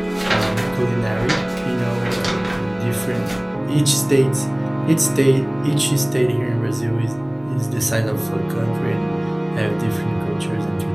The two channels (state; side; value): noise; left; hum, 28 dB below the sound